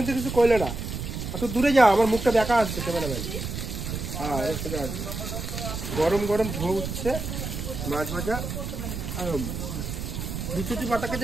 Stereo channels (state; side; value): noise; right; rumble, 5 dB below the sound